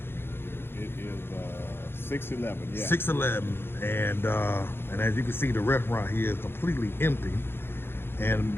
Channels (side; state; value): right; late; 0.11 ms